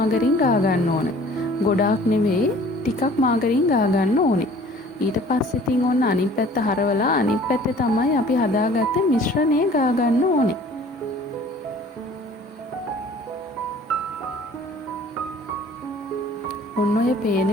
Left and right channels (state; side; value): normal; both; correlation 0.50